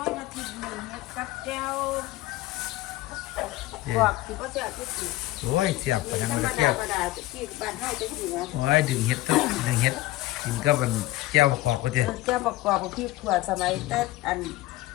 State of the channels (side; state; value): right; quieter; 17.5 dB